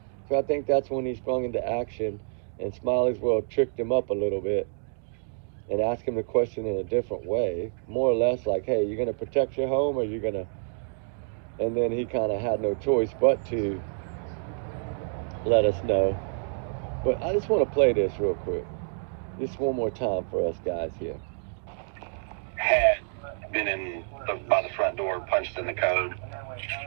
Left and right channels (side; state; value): left; silent; 59 dB below the other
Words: So I think that's when he sprung into action, and Smiley's World tricked him up a little bit and asked him the question in a different way, more or less like, hey, you going to protect your home, or you going to... And then he kind of had no choice but to let us know. But I just want to play this real quick. Just one more time for us guys here. Had been by the front door, punched in the code.